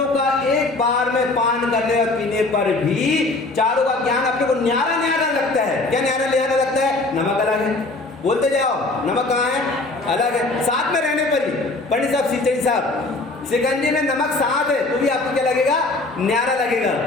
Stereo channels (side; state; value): right; quieter; 3.1 dB